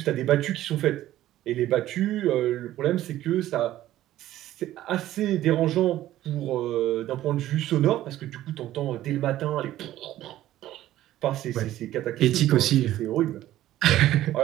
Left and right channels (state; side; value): quieter; left; 13.9 dB